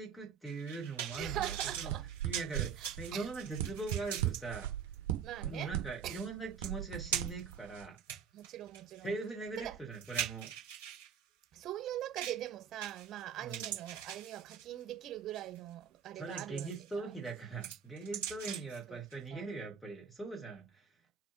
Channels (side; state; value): left; quieter; 7.4 dB